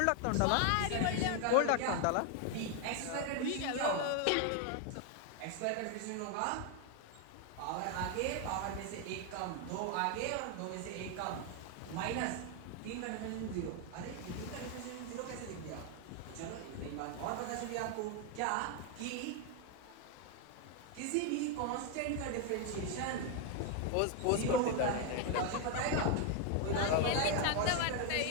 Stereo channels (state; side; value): different; both; correlation 0.01